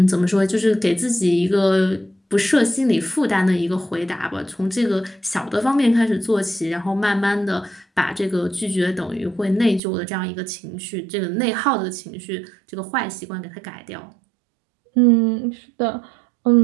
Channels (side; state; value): left; drops out; at 9.8 s